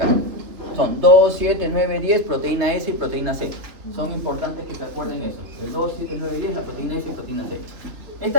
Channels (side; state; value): left; late; 3.1 ms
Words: Son 2, 7, 9, 10, proteína S y proteína C. Son importantes que se acuerden eso. El 2, 7, 9 y 10, la proteína S y proteína C.